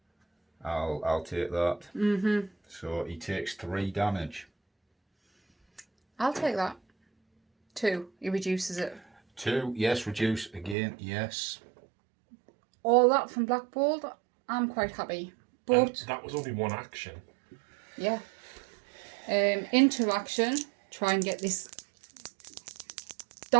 I'll take that. So he takes 3 damage. I'll take that. 2. He reduces it. 2, yes, reduce again, yes. All that from Black Bolt, I'm quite happy. And But, that was only 1 action. yeah. Interaction. Try and get this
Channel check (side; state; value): left; drops out; at 10.8 s